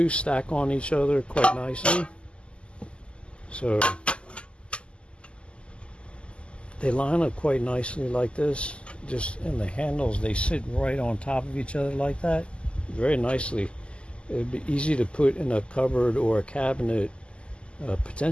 stack on each other quite nicely. So they line up quite nicely like this. Just in the handles, they sit right on top of each other like that, very nicely. It would be easy to put in a cupboard or a cabinet,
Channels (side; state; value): right; late; 0.053 ms